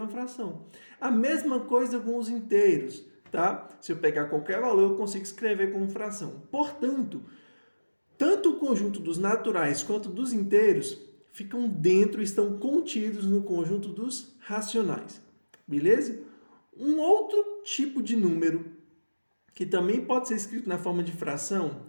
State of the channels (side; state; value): both; inverted; correlation -1.00